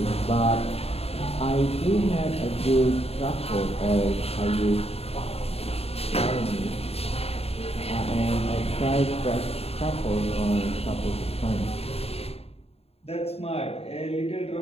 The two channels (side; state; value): right; late; 0.29 ms